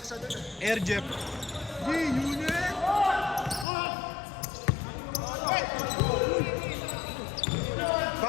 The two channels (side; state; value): right; drops out; at 3.7 s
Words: Air Jeff. Unit.